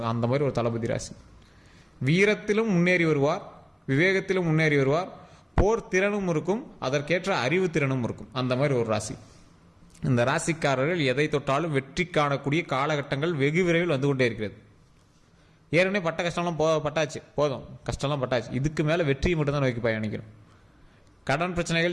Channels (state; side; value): identical; both; correlation 1.00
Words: அந்த மாதிரி ஒரு தளபதி ராசி. வீரத்திலும் முன்னேறி வருவார், விவேகத்திலும் முன்னேறி வருவார், போர் திறனும் இருக்கும், அதற்கேற்ற அறிவு திறனும் இருக்கும். அந்த மாதிரி ஒரு ராசி. இந்த ராசிக்காரர்கள் எதை தொட்டாலும் வெற்றி காணக்கூடிய காலகட்டங்கள் வெகு விரைவில் வந்து கொண்டே இருக்கிறது. ஏற்கனவே பட்ட கஷ்டம்லாம் பட்டாச்சு, போதும், கஷ்டம்லாம் பட்டாச்சு. இதுக்கு மேலே வெற்றியை மட்டும்தான் நோக்கி பயணிக்கணும். கடன்